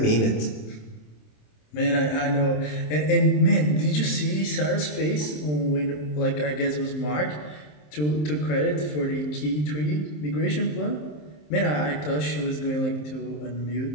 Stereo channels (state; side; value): late; right; 27 ms